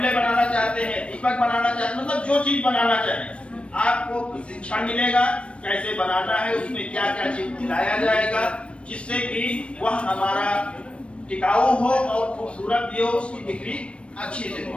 बनाना चाहते हैं, दीपक बनाना चाहते हैं, मतलब जो चीज बनाना चाहें आपको शिक्षण मिलेगा कैसे बनाना है, उसमें क्या क्या चीज मिलाया जाएगा जिससे कि वह हमारा टिकाऊ हो और खूबसूरत भी हो, उसकी बिक्री अच्छी से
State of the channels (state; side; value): late; right; 0.060 ms